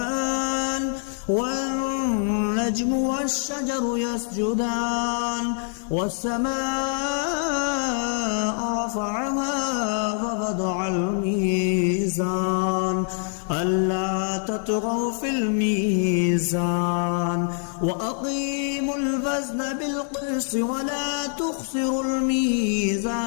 والنجم والشجر يسجدان والسماء رفعها ووضع الميزان ألا تطغوا في الميزان وأقيموا الوزن بالقسط ولا تخسروا الميزان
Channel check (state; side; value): silent; right; 62 dB below the other